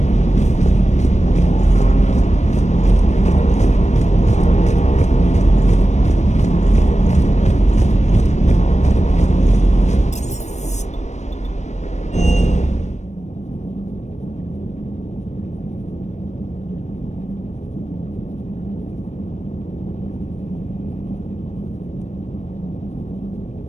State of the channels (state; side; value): late; right; 0.34 ms